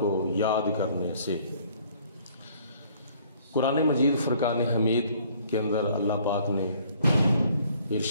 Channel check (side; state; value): both; inverted; correlation -0.60